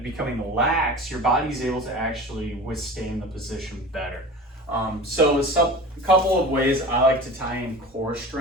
becoming lax, your body's able to actually withstand the position better. So a couple of ways I like to tie in core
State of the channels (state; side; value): normal; both; correlation 0.36